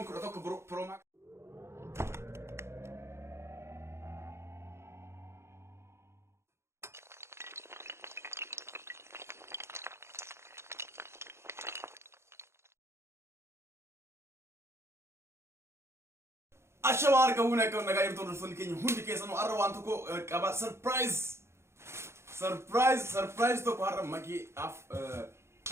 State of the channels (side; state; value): left; late; 0.13 ms